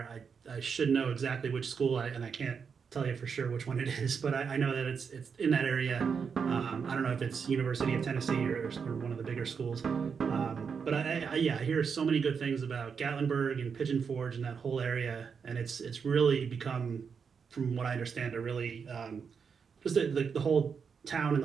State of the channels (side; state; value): left; quieter; 6.2 dB